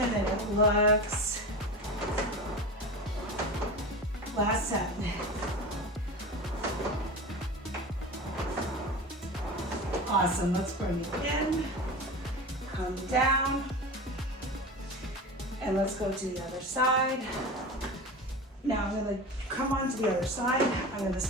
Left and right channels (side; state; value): both; normal; correlation 0.29